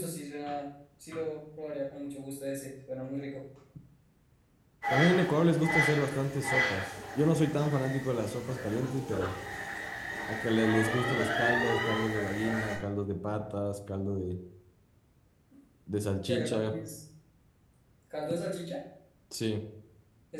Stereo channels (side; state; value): both; identical; correlation 1.00